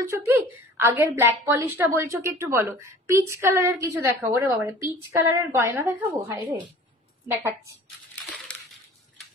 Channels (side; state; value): both; normal; correlation 0.45